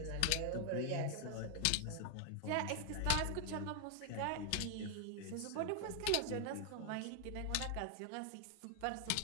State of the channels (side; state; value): both; different; correlation 0.00